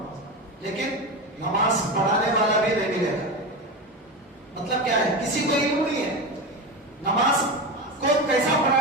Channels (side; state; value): both; normal; correlation 0.20